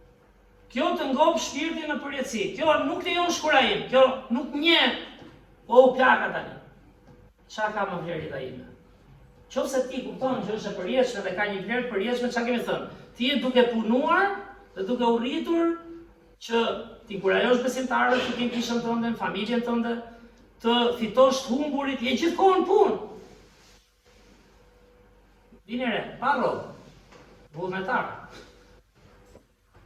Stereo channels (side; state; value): both; identical; correlation 1.00